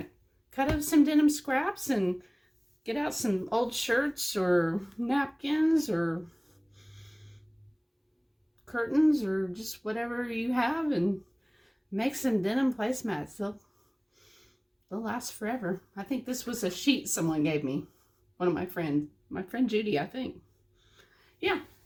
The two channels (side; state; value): both; identical; correlation 1.00